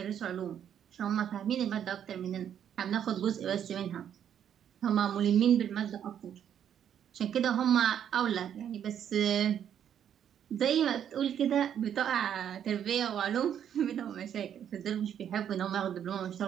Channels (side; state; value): left; quieter; 9.3 dB